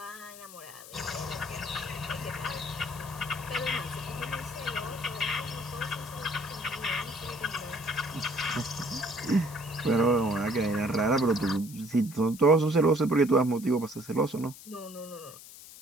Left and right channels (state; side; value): noise; left; hiss, 16 dB below the sound